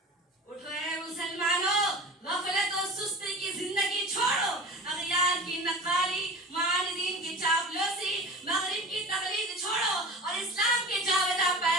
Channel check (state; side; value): normal; both; correlation 0.36